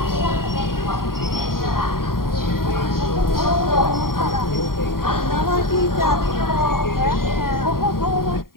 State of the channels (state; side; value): late; right; 0.92 ms